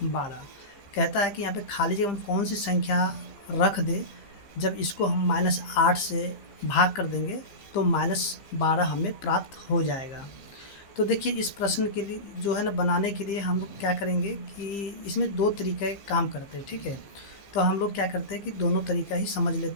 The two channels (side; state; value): right; late; 15 ms